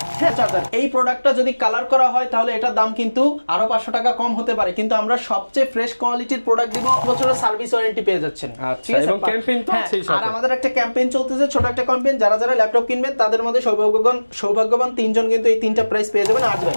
চার্জার। এই প্রোডাক্টটা যদি কালার করা হয় তাহলে এটার দাম কিন্তু আরো 500 টাকা কম হতে পারে, কিন্তু আমরা সবচেয়ে ফ্রেশ কোয়ালিটির প্রোডাক্ট দিব, বছরের সার্ভিস ওয়ারেন্টি পেয়ে যাচ্ছেন। এবং ক্যাম্পেইন তো আছেই সাথে। আর আমাদের একটা ক্যাম্পেইন চলতেছে, ছোট একটা ক্যাম্পেইন, যারা যারা ল্যাপটপ কিনবেন তাদের মধ্যে সৌভাগ্যবান 3 জন কিন্তু এই 3টা প্রাইস পেয়ে যাবেন। আজ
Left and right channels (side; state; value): both; inverted; correlation -1.00